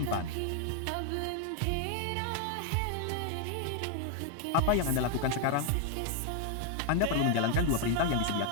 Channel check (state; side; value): different; both; correlation 0.00